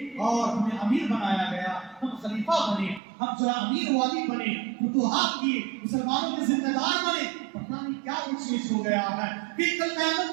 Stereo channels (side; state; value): left; drops out; at 3.0 s